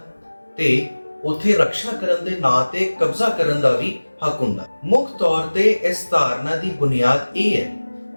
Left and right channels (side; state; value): both; inverted; correlation -1.00